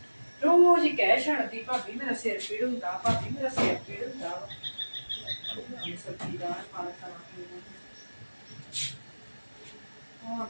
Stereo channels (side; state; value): both; inverted; correlation -1.00